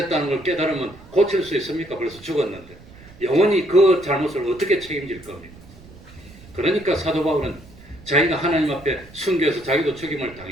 걸 깨달으면 고칠 수 있습니까? 벌써 죽었는데 영원히 그 잘못을 어떻게 책임질 겁니까? 그러니까 사도 바울은 자기가 하나님 앞에 순교해서 자기도 죽임을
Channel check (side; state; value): right; noise; rumble, 21 dB below the sound